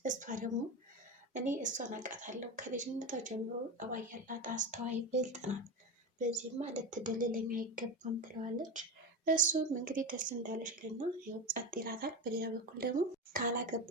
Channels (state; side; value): normal; both; correlation 0.20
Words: እሷ ደግሞ እኔ እሷን አውቃታለሁ፣ ከልጅነቷ ጀምሮ ጠባይ ያላት አስተዋይ ብልጥ ናት፣ በዚህማ ልትደልለኝ አይገባም ትለዋለች። እሱም እንግዲህ ደስ እንዳለሽ ይልና ያው ጸጥ ይላታል። በሌላ በኩል ደግሞ